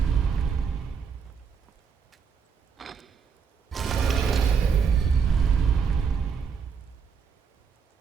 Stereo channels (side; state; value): left; quieter; 6.3 dB